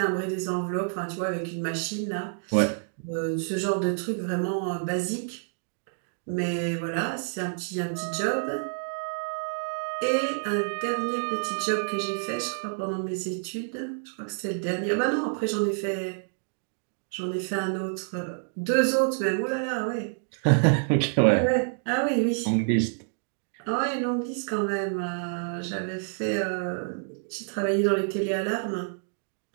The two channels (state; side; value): silent; left; digital silence